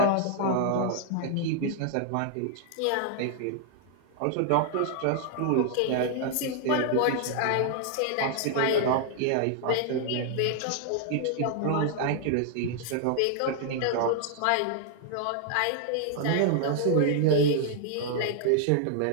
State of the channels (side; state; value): both; different; correlation 0.00